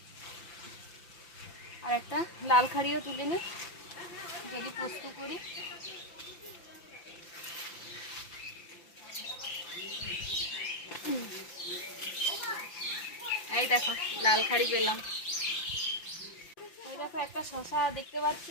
আর একটা লাল খাড়িও তুলে নিই, যদি পোস্ত করি। এই দেখো, লাল খাড়ি পেলাম। ওই দেখো, একটা শশা দেখতে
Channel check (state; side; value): late; right; 5.8 ms